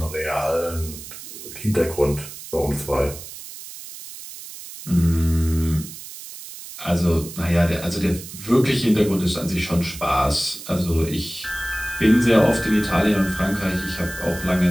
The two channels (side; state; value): right; noise; hiss, 13 dB below the sound